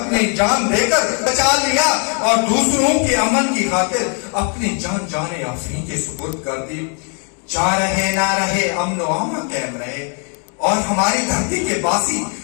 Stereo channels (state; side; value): quieter; right; 39.6 dB